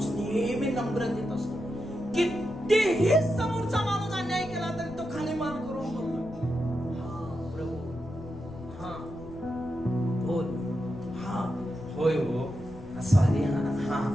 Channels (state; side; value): noise; left; rumble, 16 dB below the sound